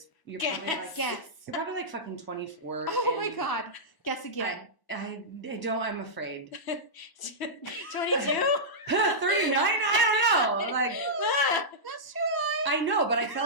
you're Guess. probably like, Guess. you're probably like fucking 24. Oh my and God. Guess again. I don't, I'm afraid. 22? 39? I don't know. Like, That's true. I know, but I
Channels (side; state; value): right; late; 1.0 ms